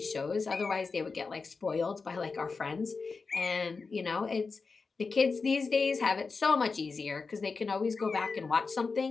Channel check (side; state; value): right; quieter; 4.5 dB